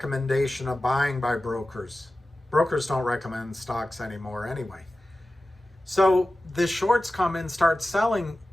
of buying by brokers. Brokers don't recommend stocks anymore anyway. So the shorts come in, start selling,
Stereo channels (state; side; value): normal; both; correlation 0.95